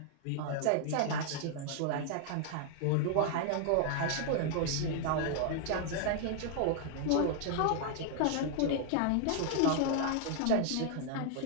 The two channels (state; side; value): different; both; correlation 0.00